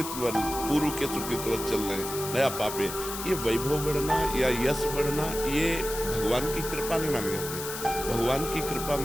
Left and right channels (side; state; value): left; noise; hiss, 7 dB below the sound